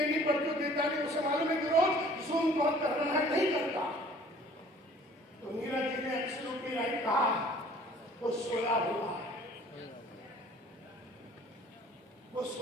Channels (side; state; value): both; normal; correlation 0.52